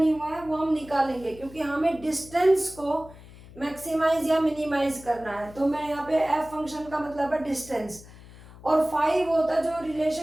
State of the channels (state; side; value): noise; left; hum, 20 dB below the sound